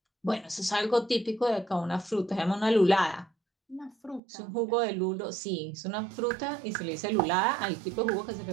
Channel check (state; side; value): drops out; left; at 4.2 s